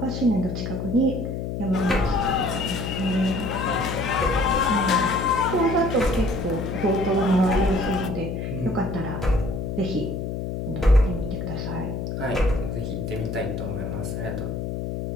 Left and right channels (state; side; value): noise; left; hum, 4 dB below the sound